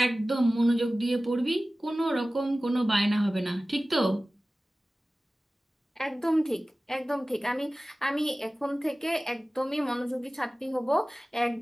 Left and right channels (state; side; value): normal; both; correlation 0.97